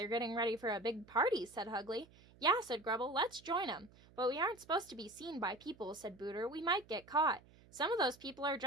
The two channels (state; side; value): noise; right; hum, 25 dB below the sound